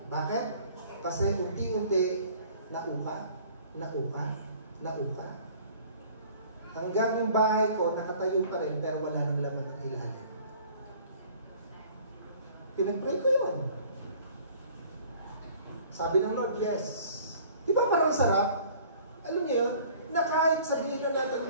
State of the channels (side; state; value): both; inverted; correlation -0.51